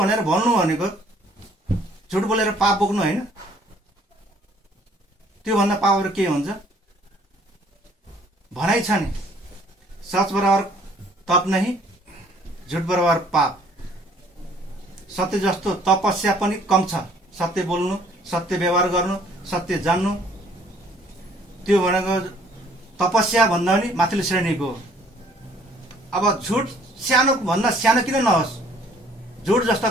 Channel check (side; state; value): both; normal; correlation 0.59